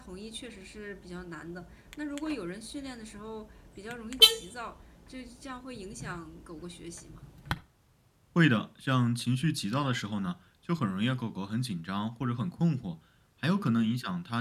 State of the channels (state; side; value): identical; both; correlation 1.00